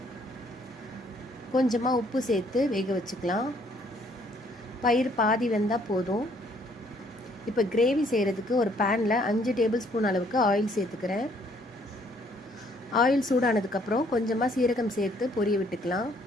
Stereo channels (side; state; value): both; normal; correlation 0.64